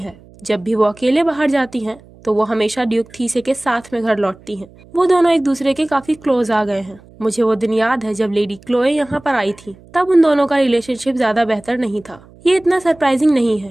जब भी वो अकेले बाहर जाती हैं तो वो हमेशा ड्यूक थीसे के साथ में घर लौटती हैं। वो दोनों एक दूसरे के काफी क्लोज आ गए हैं। मुझे वो दिन याद है जब लेडी क्लोए यहाँ पर आई थी। तब उन दोनों का रिलेशनशिप ज्यादा बेहतर नहीं था। ये इतना सरप्राइजिंग नहीं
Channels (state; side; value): noise; right; hum, 25 dB below the sound